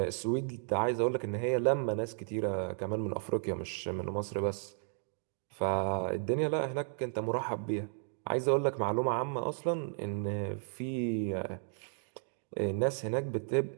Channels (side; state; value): left; silent; digital silence